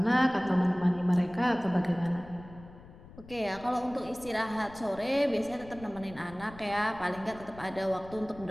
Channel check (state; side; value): noise; left; rumble, 19 dB below the sound